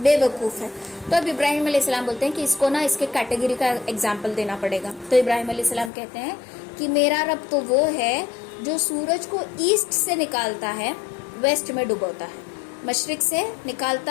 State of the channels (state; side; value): drops out; right; at 5.9 s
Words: है। तो अब इब्राहिम अलैहिस्सलाम बोलते हैं कि इसको ना इसके कैटेगरी का एग्जाम्पल देना पड़ेगा। तो इब्राहिम अलैहिस्सलाम कहते हैं कि मेरा रब तो वो है जो सूरज को ईस्ट से निकालता है, वेस्ट में डुबोता है, मशरिक से